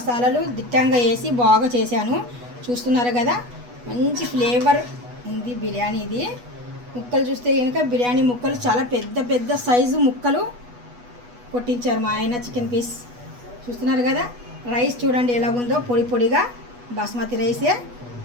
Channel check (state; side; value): late; left; 8.2 ms